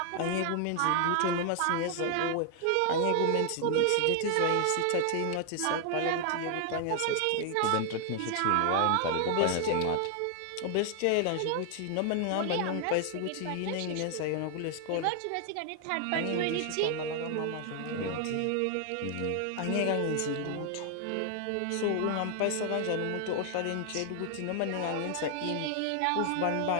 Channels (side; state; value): both; different; correlation 0.00